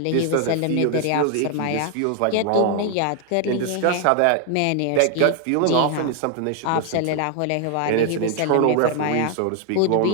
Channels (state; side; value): different; both; correlation 0.00